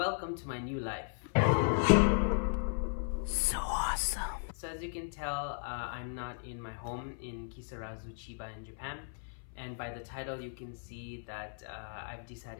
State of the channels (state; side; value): silent; right; 54 dB below the other